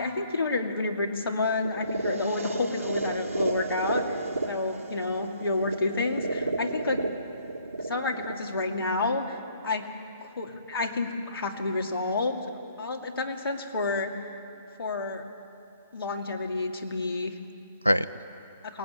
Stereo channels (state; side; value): inverted; both; correlation -0.65